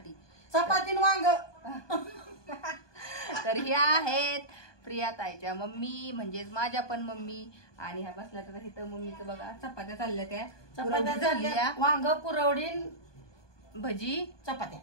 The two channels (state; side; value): late; right; 1.2 ms